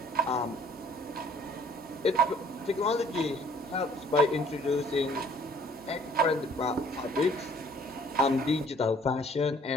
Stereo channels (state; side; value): normal; both; correlation 0.57